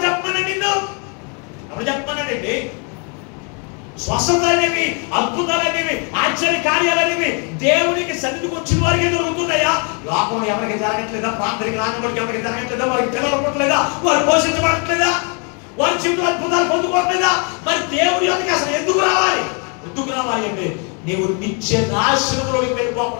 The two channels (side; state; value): right; quieter; 36.9 dB